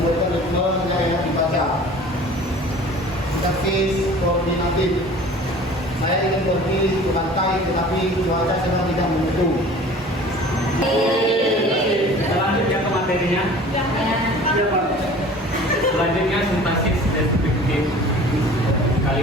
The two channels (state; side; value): normal; both; correlation 0.45